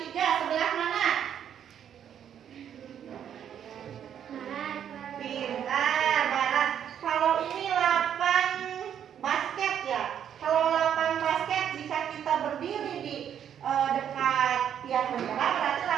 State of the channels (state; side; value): quieter; left; 9.2 dB